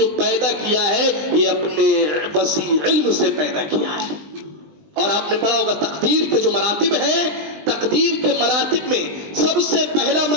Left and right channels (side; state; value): left; late; 20 ms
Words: پیدا کیا ہے یہ اپنے وسیع علم سے پیدا کیا ہے. اور آپ نے پڑھا ہوگا تقدیر کے جو مراتب ہیں، تقدیر کے مراتب میں سب سے پہلا